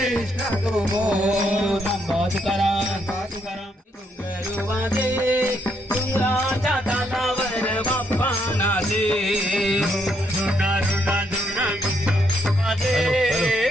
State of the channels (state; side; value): normal; both; correlation 0.74